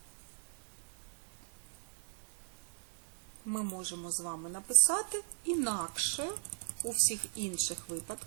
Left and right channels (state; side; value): silent; left; digital silence